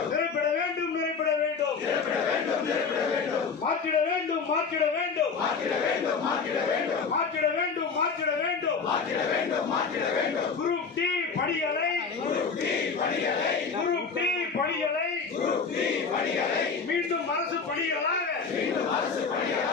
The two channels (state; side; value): quieter; right; 5.3 dB